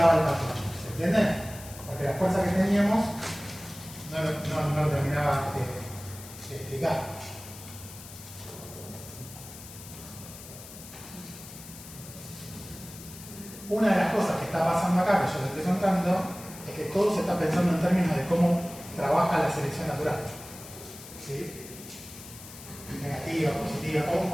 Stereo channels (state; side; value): noise; left; hiss, 15 dB below the sound